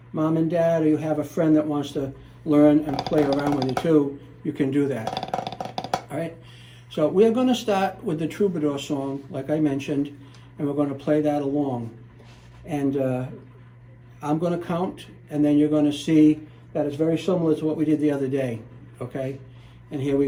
mom and dad or you have a friend that wants to learn and play around with you too, you can do that, all right? So we're going to start with the Troubadour song, like I mentioned, and we're going to play that along. And I'm going to count, and then you're going to see that it's very similar to what we did the other day, okay? And here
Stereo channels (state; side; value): identical; both; correlation 1.00